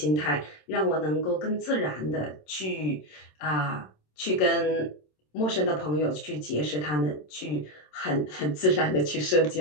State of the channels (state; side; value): late; right; 27 ms